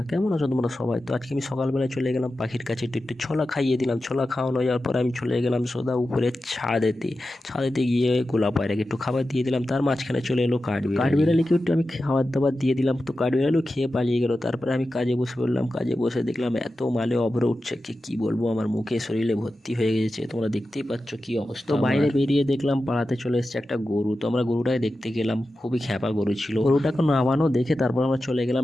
কেমন আছো তোমরা সবাই? তো আজকে আমি সকালবেলায় চলে গেলাম পাখির কাছে, একটু ছোলা খাইয়ে দিলাম। ছোলা খাওয়ানো যাওয়ার পর আমি চলে গেলাম সোজা উপরে ছাদেতে গিয়ে গোলাপ পায়রাকে একটু খাবার দিয়ে দিলাম। তার মাঝখানে চলে এলো কাঠবিড়ালিকে একটু আমি খাবার দাবার দিয়ে দিলাম। তো কাঠবিড়ালিও খেয়ে পালিয়ে গেল। তারপরে আমি কাজে বসে পড়লাম। কাজে বসে দেখলাম এত মালে অভ্র উঠছে, কি বলবো, আমার মুখে শরীরে ভর্তি হয়ে গেছে। তোমরা দেখতেই পাচ্ছ কি অবস্থা। তো বাইরে বেরিয়ে দেখলাম পাড়াতে চলে এসেছে একটা গরু। তো আমরা গরুটাকে দেখতে গেলাম, খুবই খ্যাপা গরু ছিল। গরুটাকে নামানো দেখে তারপর আমরা চলে গেলাম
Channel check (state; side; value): normal; both; correlation 0.92